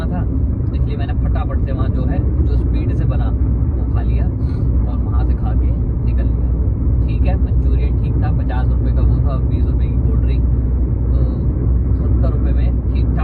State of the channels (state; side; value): identical; both; correlation 1.00